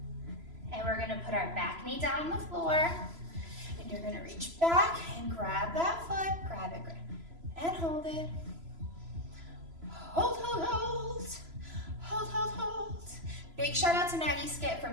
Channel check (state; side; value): late; left; 3.0 ms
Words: And we're gonna put our back knee down on the floor. And you're gonna reach back and grab that foot. Grab it, and hold it. Hold, hold, hold. Hold, hold, hold. Big shout out to Maggie Skip for